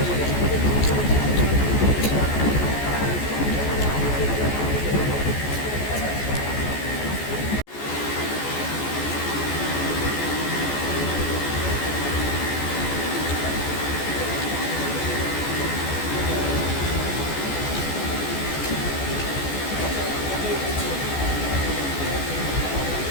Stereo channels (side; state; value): right; late; 14 ms